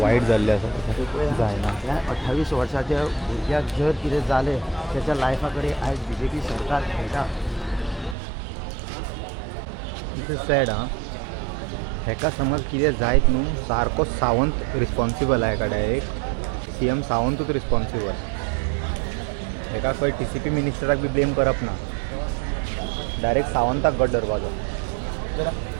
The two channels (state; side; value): drops out; left; at 8.2 s